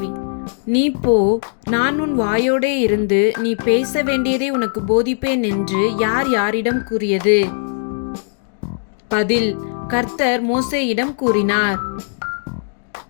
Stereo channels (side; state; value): right; silent; digital silence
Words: நீ போ, நான் உன் வாயோடே இருந்து நீ பேச வேண்டியதை உனக்கு போதிப்பேன் என்று யார் யாரிடம் கூறியது? பதில்: கர்த்தர் மோசேயிடம் கூறினார்.